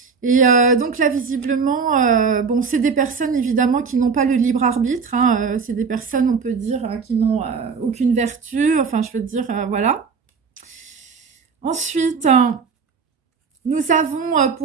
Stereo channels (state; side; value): quieter; left; 5.4 dB